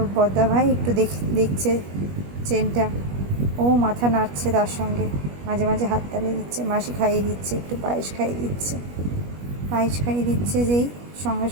বদ্দা ভাই একটু দেখছে চেনটা, ও মাথা নাড়ছে, তার সঙ্গে মাঝে মাঝে হাততালি দিচ্ছে। মাসি খাইয়ে দিচ্ছে, একটু পায়েস খাইয়ে দিচ্ছে। পায়েস খাইয়ে দিচ্ছে যেই সঙ্গে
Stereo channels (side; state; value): left; late; 21 ms